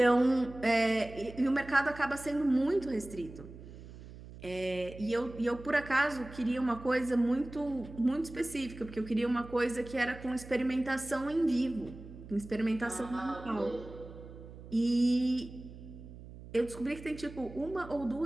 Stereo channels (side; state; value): right; noise; hum, 15 dB below the sound